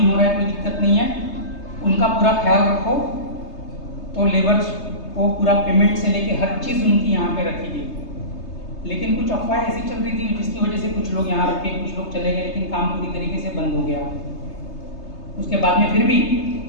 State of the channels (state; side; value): late; right; 3.3 ms